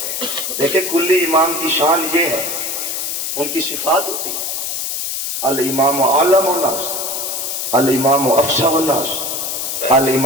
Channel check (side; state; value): left; noise; hiss, 3 dB below the sound